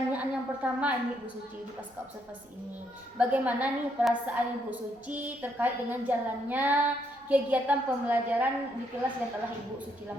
yang pertama ini Ibu Suci di pasca observasi ini, bagaimana nih perasaan Ibu Suci terkait dengan jalannya kegiatan pembelajaran di kelas yang telah Ibu Suci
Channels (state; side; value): normal; both; correlation 0.74